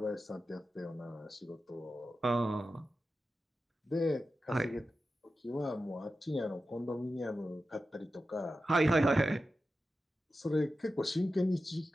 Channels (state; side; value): normal; both; correlation 0.92